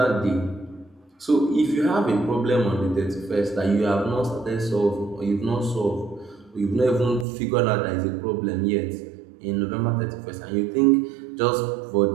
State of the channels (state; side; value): drops out; left; at 7.2 s